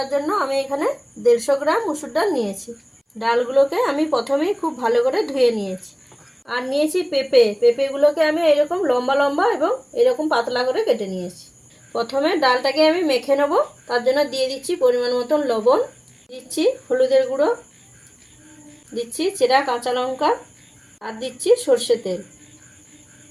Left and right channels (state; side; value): identical; both; correlation 1.00